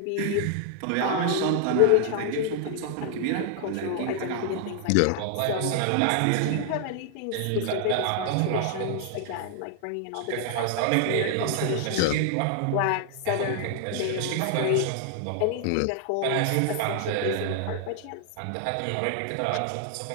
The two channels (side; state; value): both; different; correlation 0.00